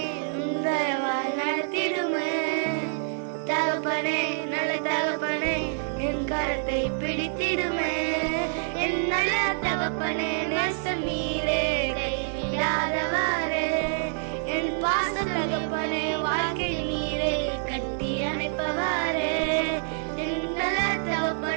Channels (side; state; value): left; silent; 57 dB below the other